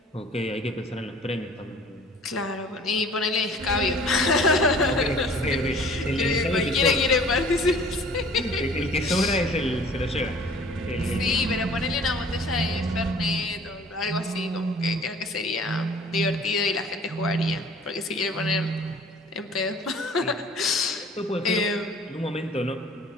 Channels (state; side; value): normal; both; correlation 0.50